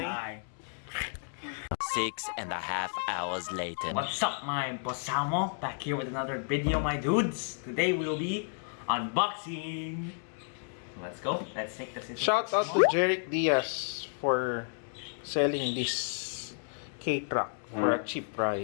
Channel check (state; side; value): silent; right; 57 dB below the other